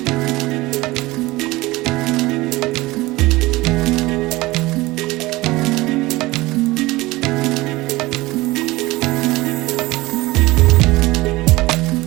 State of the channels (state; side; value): quieter; left; 20.1 dB